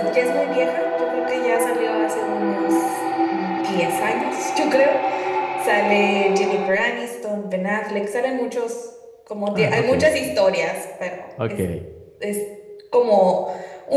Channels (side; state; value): both; identical; correlation 1.00